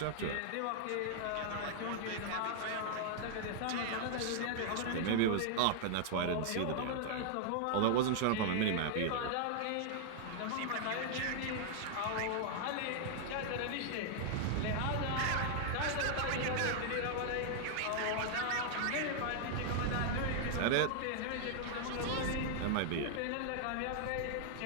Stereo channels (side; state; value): both; different; correlation -0.01